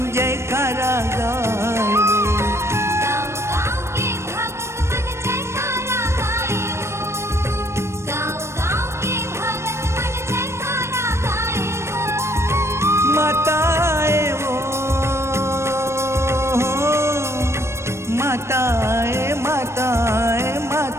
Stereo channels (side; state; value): left; late; 0.13 ms